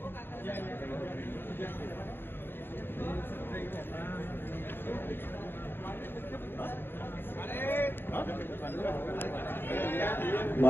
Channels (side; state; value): right; late; 0.10 ms